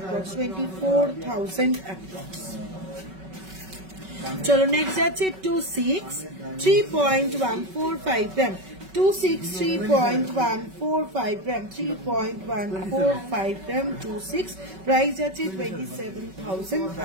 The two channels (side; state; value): left; late; 5.3 ms